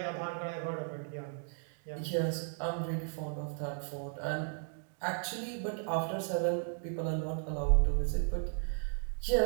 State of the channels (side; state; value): left; silent; 54 dB below the other